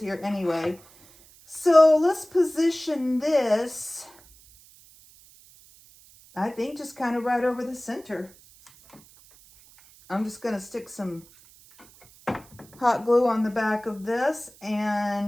anyway. So let's position this, I think, just kind of right over the center. I'm just going to stick some hot glue on the back of this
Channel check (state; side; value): noise; right; hiss, 25 dB below the sound